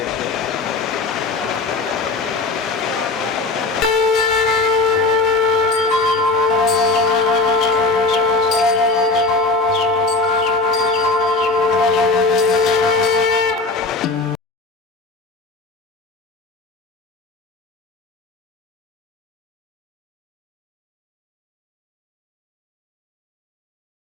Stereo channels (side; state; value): right; quieter; 3.5 dB